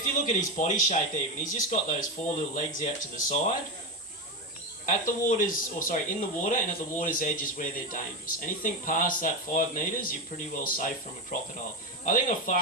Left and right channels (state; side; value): normal; both; correlation 0.14